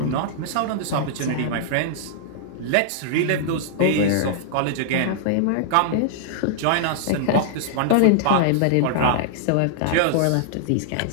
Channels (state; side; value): different; both; correlation -0.01